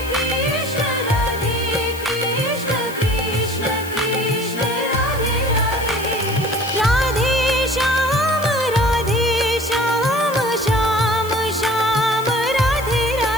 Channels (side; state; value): left; noise; hiss, 16 dB below the sound